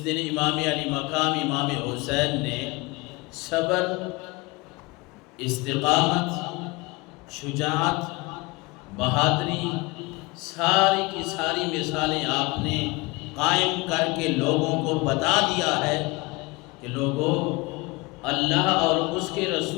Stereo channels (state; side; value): quieter; right; 24.4 dB